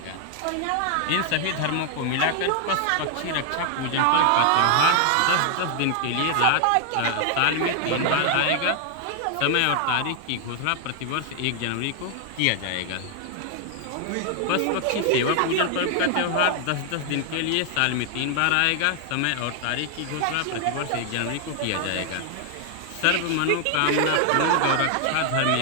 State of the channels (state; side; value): different; both; correlation 0.00